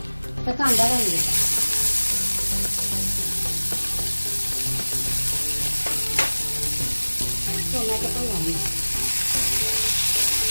कांदा घालून घ्या। टोमॅटो पण घालून घ्या।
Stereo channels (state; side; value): inverted; both; correlation -1.00